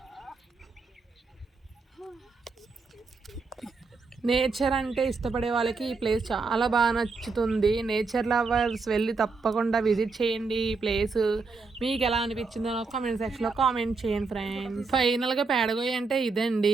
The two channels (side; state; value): left; quieter; 4.3 dB